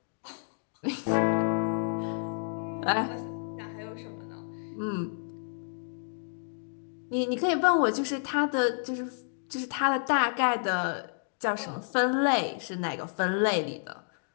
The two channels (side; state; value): right; silent; digital silence